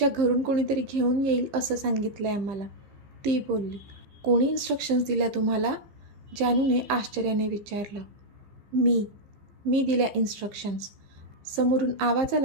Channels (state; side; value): late; left; 15 ms